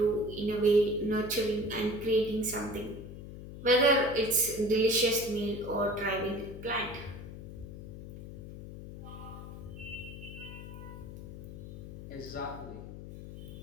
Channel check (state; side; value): noise; left; hum, 11 dB below the sound